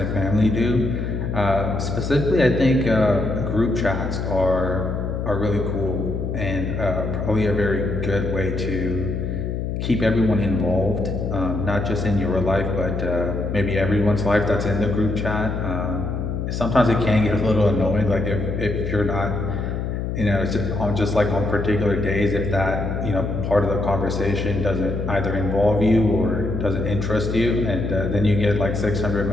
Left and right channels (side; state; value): left; noise; hum, 3 dB below the sound